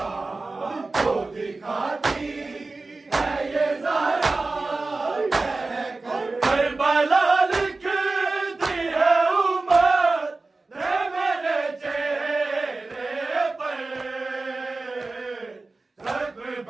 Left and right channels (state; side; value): quieter; left; 3.5 dB